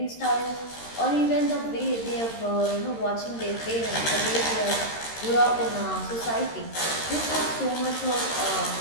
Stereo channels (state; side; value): late; right; 13 ms